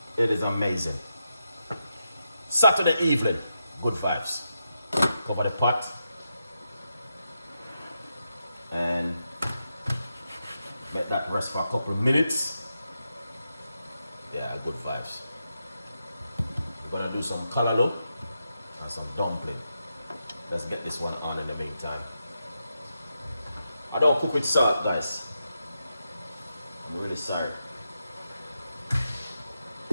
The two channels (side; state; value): both; inverted; correlation -0.86